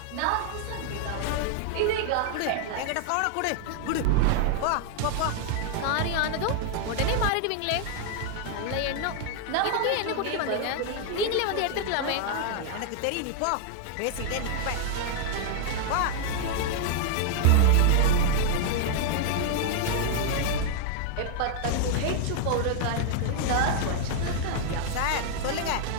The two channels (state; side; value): different; both; correlation 0.00